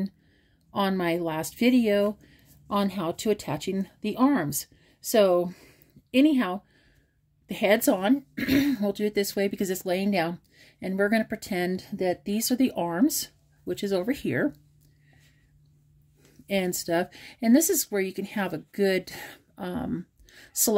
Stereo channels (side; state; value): both; identical; correlation 1.00